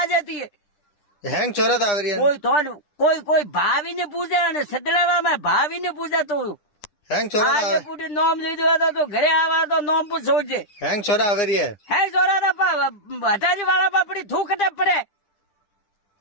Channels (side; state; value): right; late; 10 ms